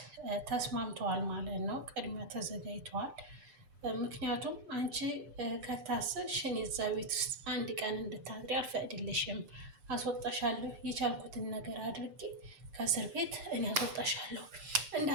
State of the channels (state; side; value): late; left; 6.8 ms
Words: ተስማምተዋል ማለት ነው። ቅድሚያ ተዘጋጅተዋል። ምክንያቱም አንቺ ከታሰርሽ እኔ እዛ ቤት ውስጥ አንድ ቀን እንድታድሪ አልፈቅድልሽም፣ አስወጣሻለሁ፣ የቻልኩትን ነገር አድርጌ ከእስር ቤት እኔ አስወጣሻለሁ፣